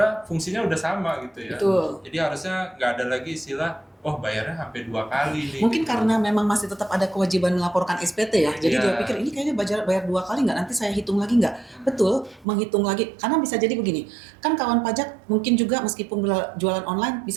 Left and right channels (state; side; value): drops out; left; at 12.5 s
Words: fungsinya udah sama gitu ya. Betul. Jadi harusnya nggak ada lagi istilah bayarnya sampai 2 kali nih. Mungkin karena memang masih tetap ada kewajiban melaporkan SPT ya. Jadi dia pikir ini kayaknya bayar 2 kali nggak, nanti saya hitung lagi nggak. Betul, menghitung lagi. Karena bisa jadi begini, kan kawan pajak mungkin juga meskipun jualan online,